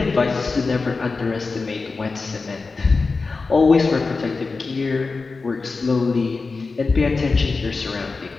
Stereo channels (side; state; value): right; quieter; 4.1 dB